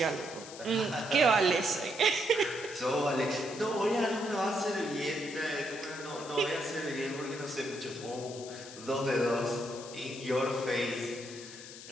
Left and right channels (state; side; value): noise; left; hiss, 14 dB below the sound